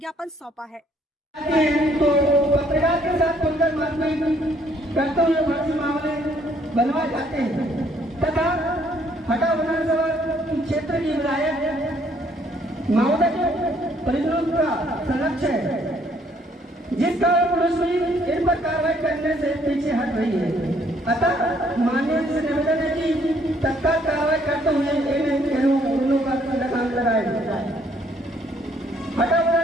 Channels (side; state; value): both; normal; correlation 0.65